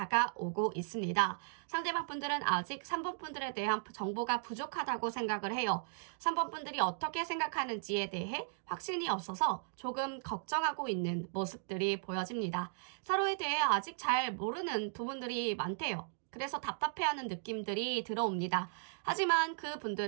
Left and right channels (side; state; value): left; silent; digital silence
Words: 있습니다. 상대방 분들은 아직 3번 분들에 대한 정보가 부족하다고 생각을 해요. 3번 분들이 어떻게 생각하는지에 대해 확신이 없어서 조금 걱정하고 있는 모습들이 보여집니다. 서로에 대해 아직 잘 모르는 부분들이 많대요. 그래서 답답해하는 느낌들이 들어옵니다. 하지만 그